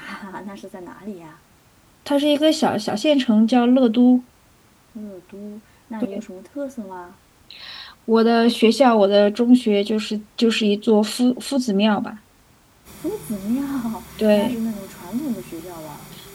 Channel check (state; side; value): identical; both; correlation 1.00